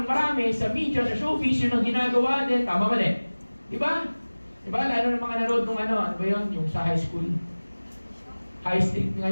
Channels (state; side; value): inverted; both; correlation -1.00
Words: marami sa media, sa showbiz, yun ang ginagawa din. Tama mali? Diba? Diba? Lalo ng mga nanood nung ano ba yun? Yung sa high school. High street